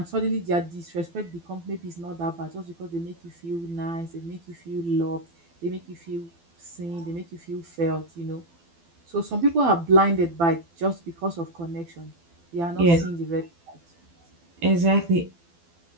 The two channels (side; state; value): left; late; 12 ms